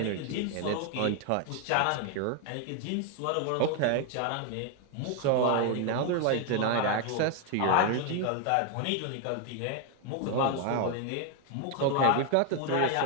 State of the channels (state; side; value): different; both; correlation 0.01